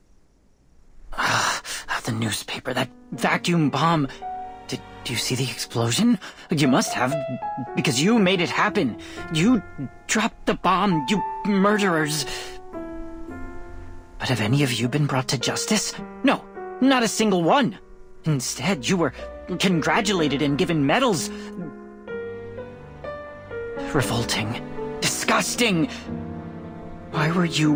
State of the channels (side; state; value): both; identical; correlation 1.00